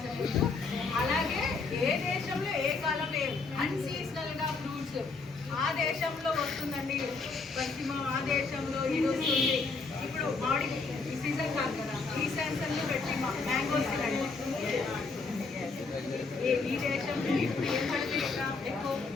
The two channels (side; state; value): right; quieter; 4.2 dB